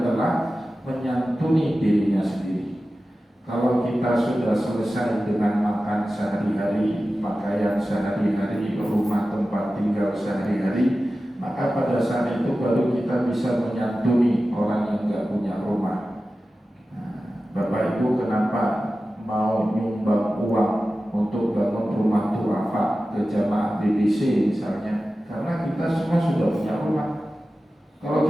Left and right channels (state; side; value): normal; both; correlation 0.94